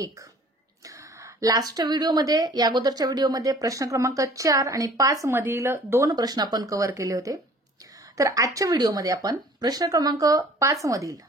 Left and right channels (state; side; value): normal; both; correlation 0.51